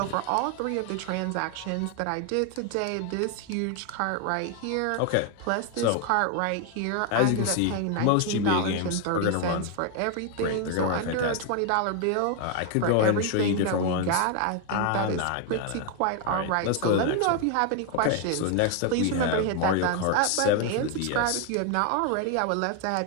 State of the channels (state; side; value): different; both; correlation 0.01